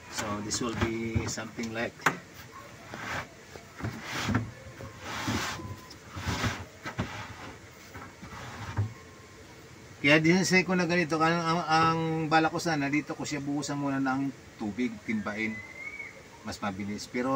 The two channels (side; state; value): both; identical; correlation 1.00